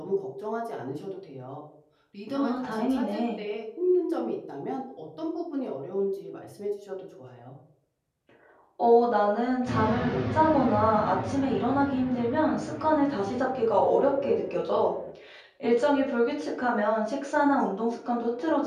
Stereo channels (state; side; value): identical; both; correlation 1.00